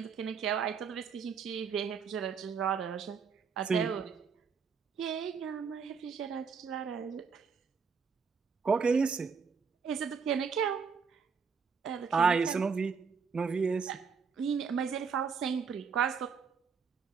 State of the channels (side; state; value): left; quieter; 5.8 dB